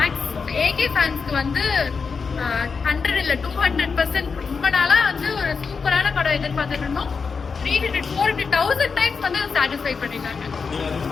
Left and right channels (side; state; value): right; quieter; 5.2 dB